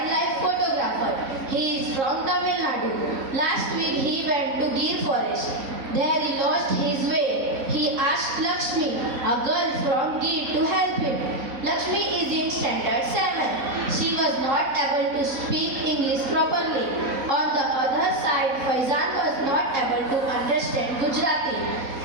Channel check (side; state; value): left; late; 4.0 ms